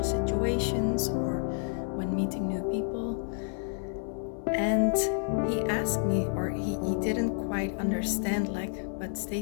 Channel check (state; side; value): silent; right; 57 dB below the other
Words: situations or when meeting new people. And he asked me, or he didn't quite understand, but